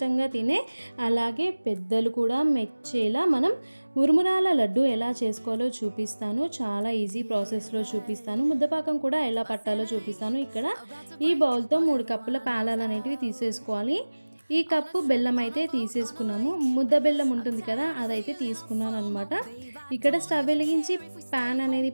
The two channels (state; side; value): inverted; both; correlation -1.00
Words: తినే అలాగే పెద్దలు కూడా మెచ్చేలా మనం మురుమురాల లడ్డు ఎలా చేసుకోవాలో చూపిస్తాను. చాలా ఈజీ ప్రాసెస్లో చూపిస్తాను. ముద్దపాకం కూడా ఎలా పట్టాలో చూపిస్తాను. ఇక్కడ ఈ బౌల్తో 3 కప్పుల పాలాలు అనేటివి తీసేసుకోవాలి. ఈ కప్పు బెల్లం అయితే తీసేసుకున్నాము. ముద్ద బెల్లం ఉంటుంది కదా, అదైతే తీసుకున్నాను అనమాట. ఇక్కడ స్టవ్ వెలిగించి ప్యాన్ అనేది